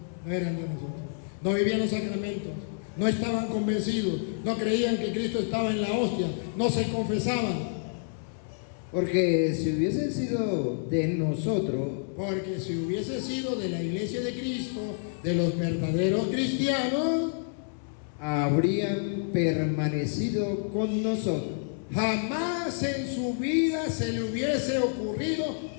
no eran de nosotros. No vivían los sacramentos, no estaban convencidos, no creían que Cristo estaba en la hostia, no se confesaban. Porque si hubiesen sido de nosotros, Porque si hubiese sido de la iglesia de Cristo, de los verdaderos cristianos, habrían permanecido con nosotros. jamás en su vida se le hubiese ocurrido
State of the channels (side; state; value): right; silent; 59 dB below the other